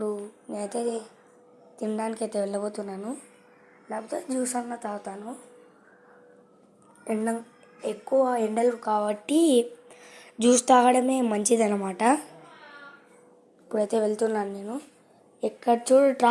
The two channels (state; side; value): identical; both; correlation 1.00